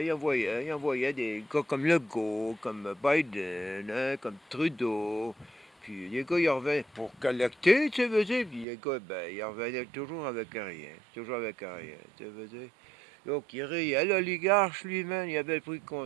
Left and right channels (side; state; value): left; drops out; at 8.7 s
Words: des gars comme Legault, comme Biden, hein, comme Trudeau. Puis les gars, ils revenaient pour collecter, tu veux dire. Puis les gars, ben, ils revenaient toujours avec rien. Toujours avec rien, tu veux dire. Donc, il riait. L'oligarche, lui-même, il avait pris le